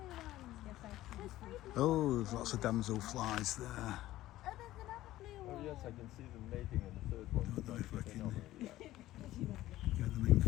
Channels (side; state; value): right; quieter; 15.3 dB